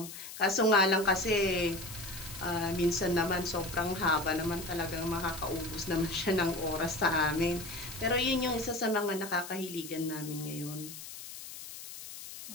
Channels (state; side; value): noise; left; hiss, 12 dB below the sound